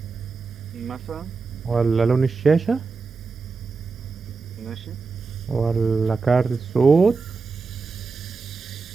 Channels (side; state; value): left; quieter; 4.5 dB